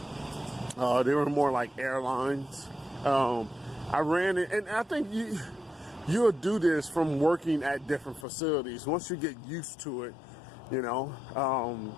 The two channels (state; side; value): drops out; right; at 8.2 s